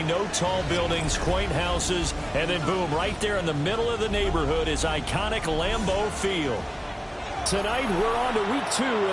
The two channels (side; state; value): both; identical; correlation 1.00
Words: no tall buildings, quaint houses, and then boom, right there in the middle of the neighborhood is iconic Lambeau Field. Tonight, we're on to week 2